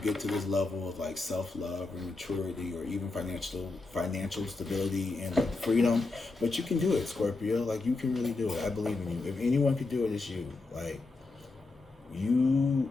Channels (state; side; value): quieter; right; 3.6 dB